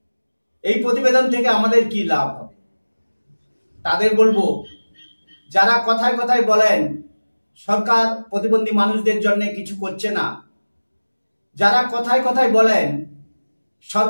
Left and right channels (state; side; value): inverted; both; correlation -1.00